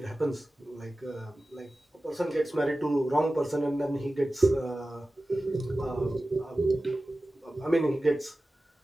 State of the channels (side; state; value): both; normal; correlation 0.95